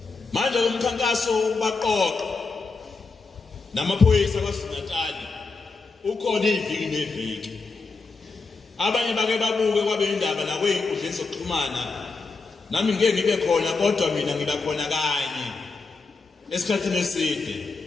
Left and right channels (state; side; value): quieter; right; 4.2 dB